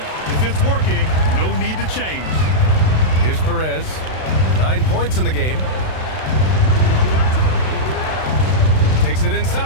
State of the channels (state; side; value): late; right; 32 ms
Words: If it's working, no need to change. Here's Perez. 9 points in the game. Takes it